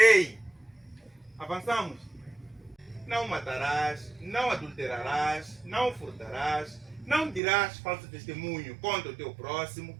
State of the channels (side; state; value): left; drops out; at 7.4 s